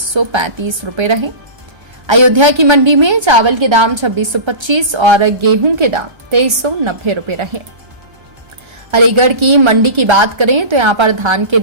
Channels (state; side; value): late; left; 1.3 ms